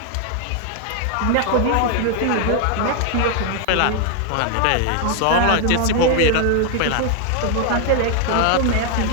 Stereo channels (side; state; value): both; different; correlation 0.00